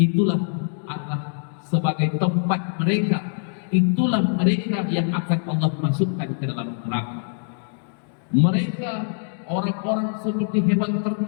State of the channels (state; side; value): silent; right; digital silence